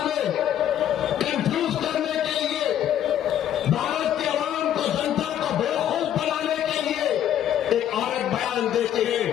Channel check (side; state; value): right; quieter; 10.7 dB